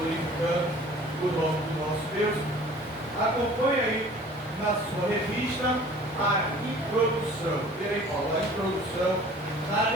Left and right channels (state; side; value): normal; both; correlation 0.48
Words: o nome do nosso Deus. Acompanhe aí na sua revista a introdução. Vê aí, Paulo, a introdução na